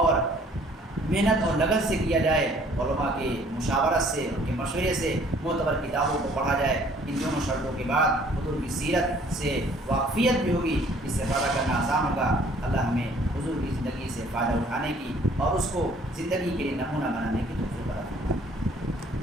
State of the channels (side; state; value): both; normal; correlation 0.58